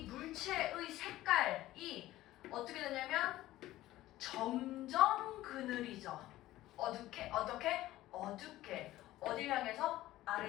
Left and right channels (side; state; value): right; quieter; 15.7 dB